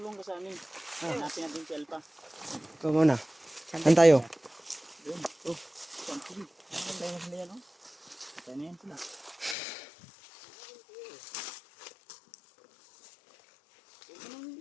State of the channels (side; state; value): right; drops out; at 9.6 s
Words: ka sa amin. Hanapin natin si Alpha. ikaw muna. Saan tayo? Doon. Oh. Sige. Tayo na sila yan, oh. Tayo na yan sila.